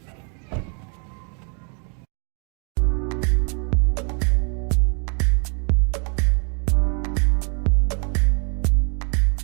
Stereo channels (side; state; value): left; quieter; 39.6 dB